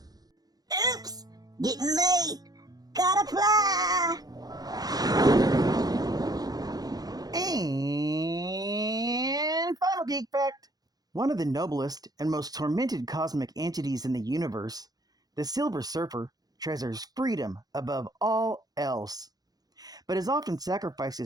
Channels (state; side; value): late; left; 0.19 ms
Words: Oops! Getting late! Gotta fly! And final geek fact. One of the noblest and most tormented cosmic entities in the universe, the Silver Surfer treasures freedom above all else, but has often sacrificed